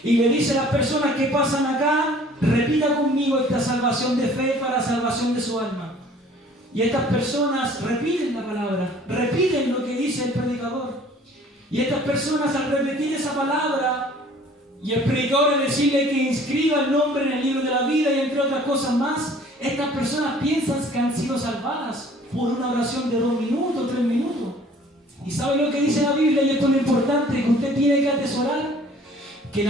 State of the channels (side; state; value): both; normal; correlation 0.53